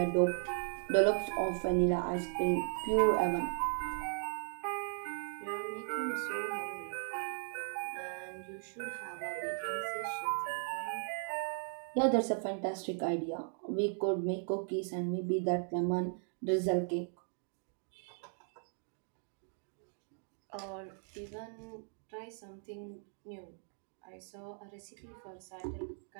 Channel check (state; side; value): silent; left; 53 dB below the other